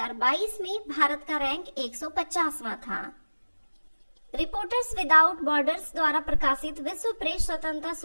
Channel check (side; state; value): both; inverted; correlation -1.00